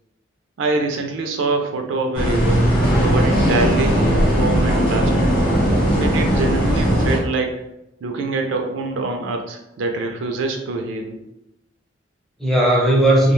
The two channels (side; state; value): both; normal; correlation 0.59